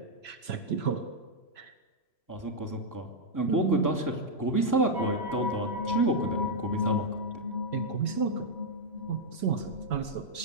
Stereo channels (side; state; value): right; late; 3.0 ms